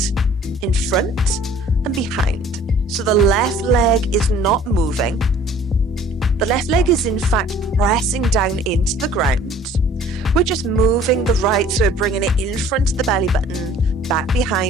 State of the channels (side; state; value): both; normal; correlation 0.52